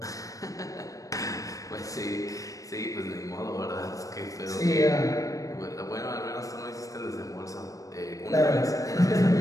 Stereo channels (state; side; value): late; right; 0.16 ms